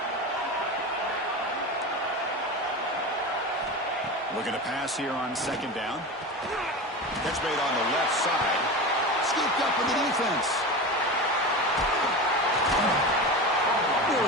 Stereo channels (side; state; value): both; normal; correlation 0.26